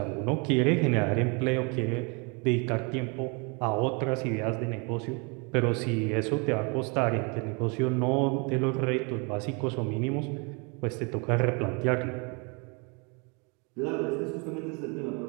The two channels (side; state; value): left; quieter; 32.5 dB